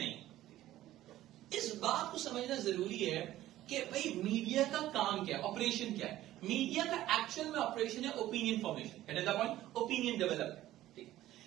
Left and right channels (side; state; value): left; quieter; 14.4 dB